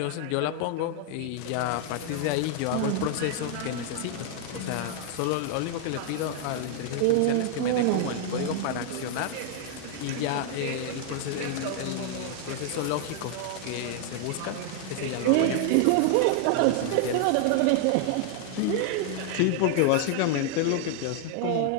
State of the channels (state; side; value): different; both; correlation 0.00